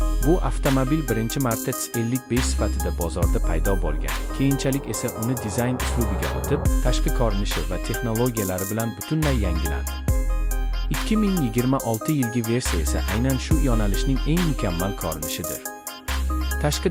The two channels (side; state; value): both; identical; correlation 1.00